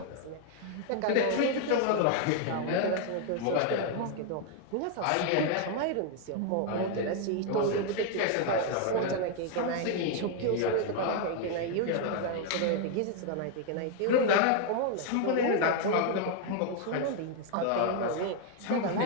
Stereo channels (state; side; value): different; both; correlation 0.00